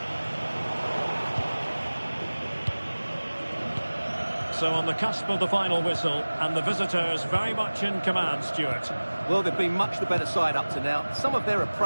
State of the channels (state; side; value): inverted; both; correlation -1.00